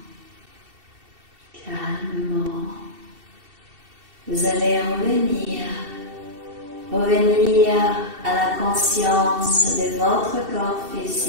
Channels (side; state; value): left; late; 2.7 ms